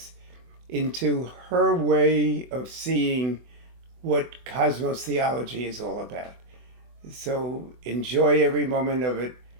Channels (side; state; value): left; late; 24 ms